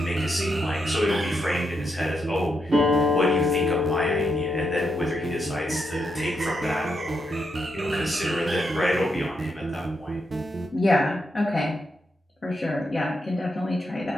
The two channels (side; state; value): both; normal; correlation 0.82